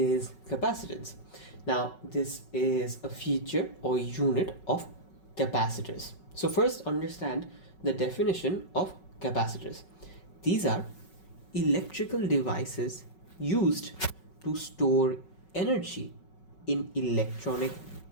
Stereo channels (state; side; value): late; right; 5.4 ms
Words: capacitance? Now, this is a feature or unit of capacitors. So first understand the definition of capacitors. These are electrical devices used to store energy in electronic